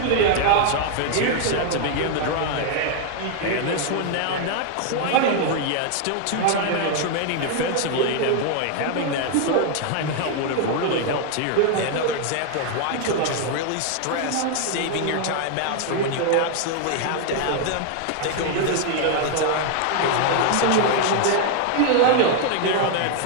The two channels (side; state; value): both; different; correlation 0.00